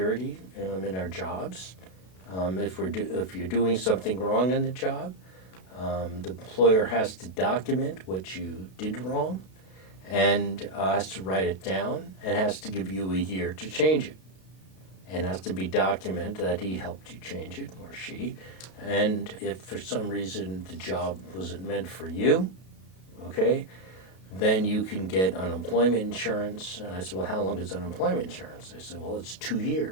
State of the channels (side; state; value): right; late; 32 ms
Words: in our jobs. If you're doing something wrong in the job, the employer has to document what you did wrong and has to write it down and has to give you a year to change it. And has to be documented that he helped you change it, or she. And if for some reason the job wasn't meant for you, okay, then you can get unemployment insurance. And I said, well, how long is unemployment insurance? They said, well, it's 2